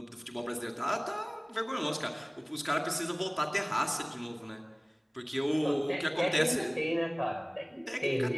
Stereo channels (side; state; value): both; identical; correlation 1.00